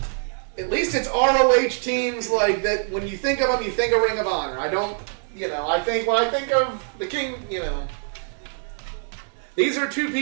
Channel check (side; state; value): left; silent; 61 dB below the other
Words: ROH teams like that. When you think of them, you think of Ring of Honor. I don't, you know, I think of the King, you know. These are two